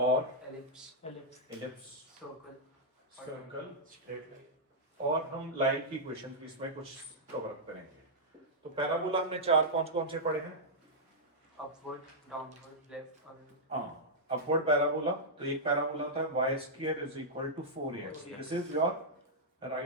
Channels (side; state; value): both; normal; correlation -0.09